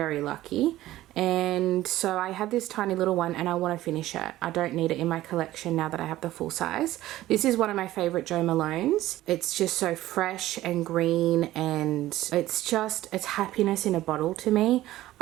lucky. And so I had this tiny little one and I want to finish it. I don't need it in my collection now that I have the full size. This is one of my favorite Jo Malones. It's just so fresh and green, and it's happiness in a bottle to me.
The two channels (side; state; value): left; quieter; 15.3 dB